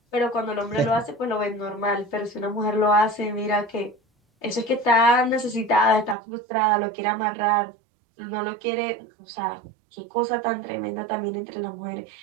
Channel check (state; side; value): drops out; left; at 6.2 s